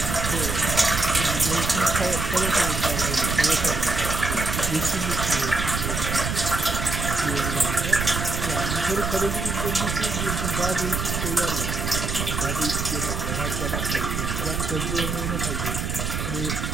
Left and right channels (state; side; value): noise; right; rumble, 2 dB below the sound